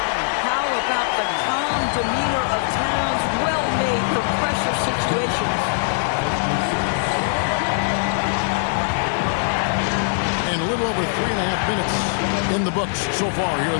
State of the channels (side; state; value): right; silent; digital silence